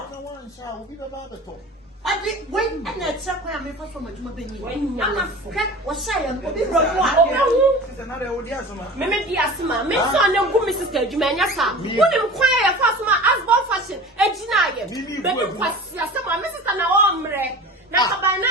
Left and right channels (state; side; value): normal; both; correlation 0.37